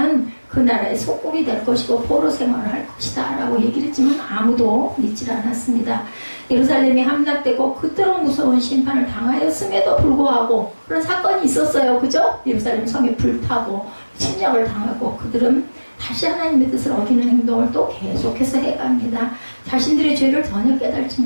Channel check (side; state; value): both; inverted; correlation -1.00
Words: 그 나라의 속국이 될 것이고 포로 생활을 할 것이다 라고 얘기를 했지만 아무도 믿질 않았습니다. 예루살렘이 함락되고 그토록 무서운 심판을 당하였음에도 불구하고 그런 사건이 있었어요. 그죠? 예루살렘 성이 불타고 침략을 당하고 그들은 다시 하나님의 뜻을 어기는 행동을 또 계속해서 해갑니다. 자신들의 죄를 전혀 깨달지